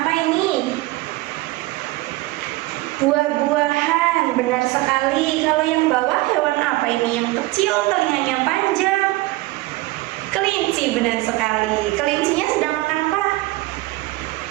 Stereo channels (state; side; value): quieter; left; 19.7 dB